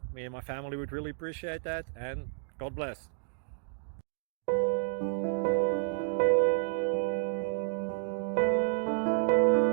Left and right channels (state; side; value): silent; left; 57 dB below the other